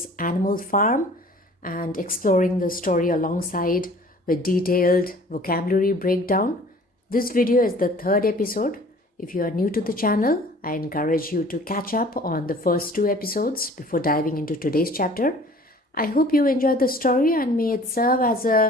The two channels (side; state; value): both; normal; correlation 0.50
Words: Animal Farm and exploring the story alongside with detailed vocabulary breakdown. This video is the third episode. If you are new to the channel, I encourage you to catch up on the first two episodes before diving into today's chapter. I hope you enjoyed the story and may it serve as